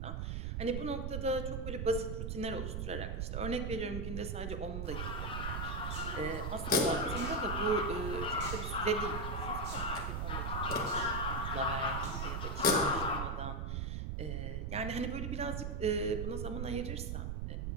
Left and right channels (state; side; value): noise; right; rumble, 2 dB below the sound